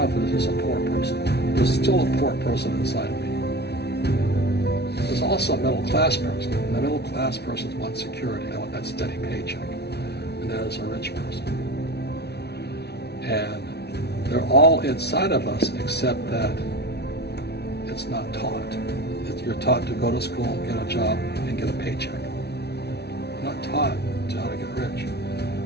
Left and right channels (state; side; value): late; right; 0.49 ms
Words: us is a poor person. There's still a poor person inside me. There's also a middle class person. And the middle class person wants security. They want that steady paycheck. And that is a rich person. And they're all inside of us except that it's not taught. You're taught to go to school, get a job, and get a paycheck. You're not taught how to get rich.